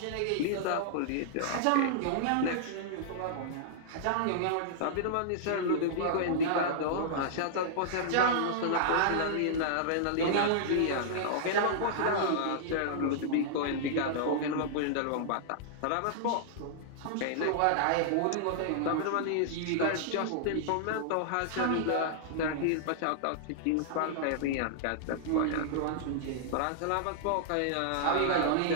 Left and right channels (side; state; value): both; different; correlation -0.01